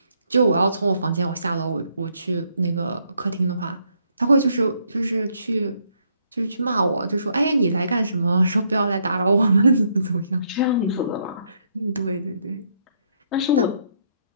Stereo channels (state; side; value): inverted; both; correlation -0.72